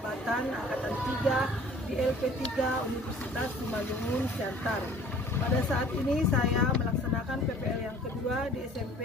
Angkatan 3 di LP3 Universitas Simalungun, Siantar. Pada saat ini saya melaksanakan PPL yang kedua di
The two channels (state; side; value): normal; both; correlation 0.50